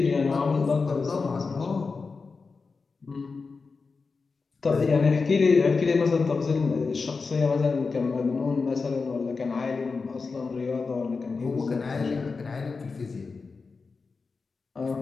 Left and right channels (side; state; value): right; quieter; 4.5 dB